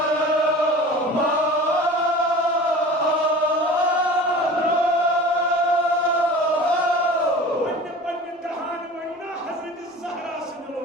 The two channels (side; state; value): both; normal; correlation 0.39